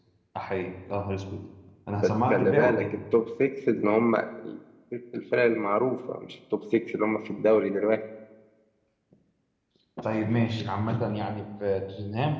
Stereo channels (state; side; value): identical; both; correlation 1.00